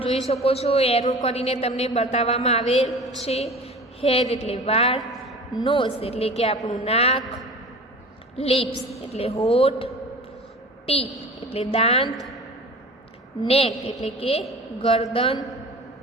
જોઈ શકો છો, એરો કરીને તમને બતાવવામાં આવેલ છે. હેર એટલે વાળ. નોઝ એટલે કે આપણું નાક. લિપ્સ એટલે હોઠ. ટીથ એટલે દાંત. નેક એટલે કે ગરદન.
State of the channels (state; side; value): normal; both; correlation 0.39